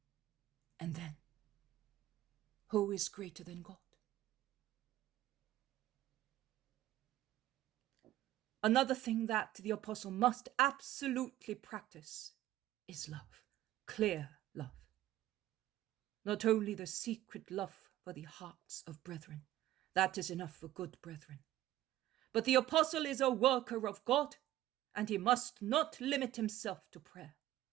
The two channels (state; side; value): quieter; left; 14.3 dB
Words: And then, who is greater than God? Another thing that the apostle must absolutely practice is love, clear love. Not only the secret love for the hearts of brethren, that is enough for good brethren, but the apostle is a worker of God, and he must not limit himself to prayer.